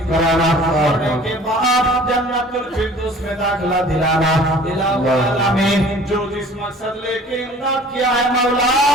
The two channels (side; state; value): both; normal; correlation 0.48